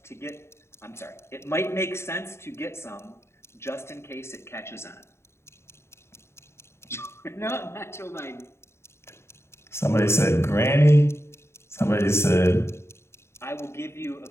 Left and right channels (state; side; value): late; right; 0.13 ms